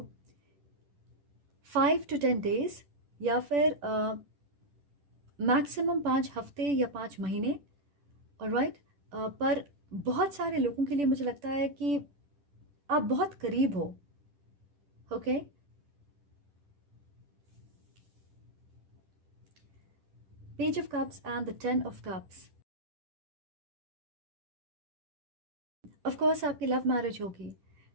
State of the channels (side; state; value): left; late; 10 ms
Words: 5 to 10 days या फिर मैक्सिमम 5 हफ्ते या 5 महीने। ऑलराइट, पर बहुत सारे लोगों के लिए मुझे लगता है कि आप बहुत करीब हो। Okay, page of cups and the 10 of cups. Of course आपकी लव मैरिज होगी